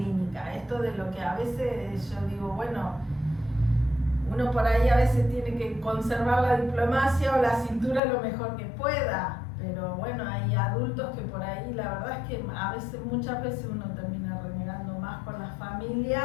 Esto de lo que a veces yo digo, bueno, uno por ahí a veces tiene que conservar la diplomacia o la cintura lo mejor que pueda. Pero bueno, hay adultos que por ahí, la verdad es que muchas veces uno termina renegando más con las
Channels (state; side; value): drops out; right; at 8.0 s